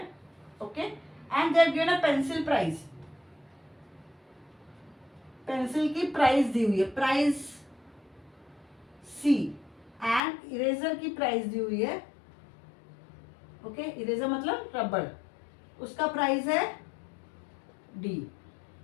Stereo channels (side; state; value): right; drops out; at 10.2 s